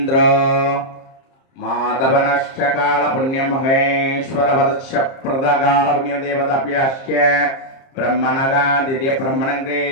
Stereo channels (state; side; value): late; right; 30 ms